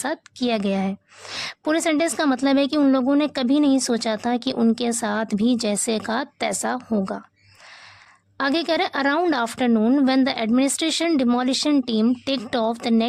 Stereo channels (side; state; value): both; identical; correlation 1.00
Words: किया गया है। पूरे सेंटेंस का मतलब है कि उन लोगों ने कभी नहीं सोचा था कि उनके साथ भी जैसे का तैसा होगा। आगे कह रहे around afternoon when the administration demolition team ticked of the